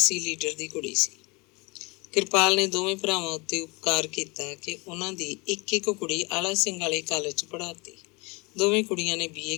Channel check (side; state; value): right; quieter; 27.2 dB